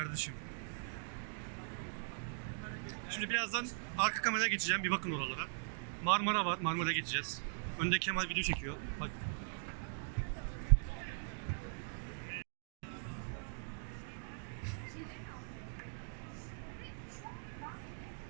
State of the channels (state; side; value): silent; left; digital silence